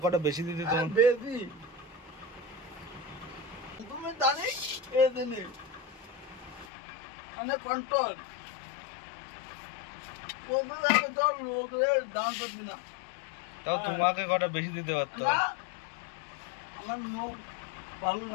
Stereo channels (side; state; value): right; drops out; at 6.7 s